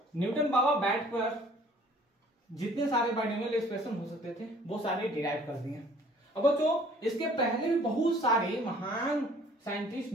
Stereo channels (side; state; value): both; normal; correlation 0.54